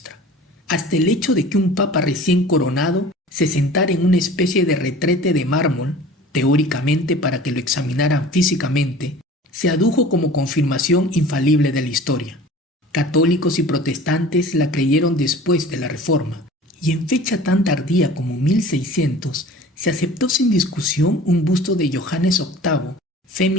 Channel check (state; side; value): normal; both; correlation 0.43